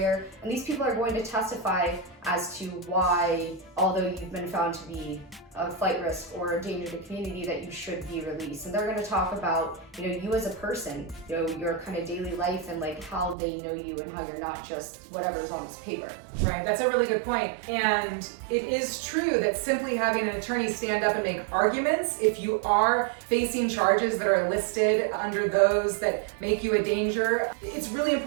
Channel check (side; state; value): left; drops out; at 13.4 s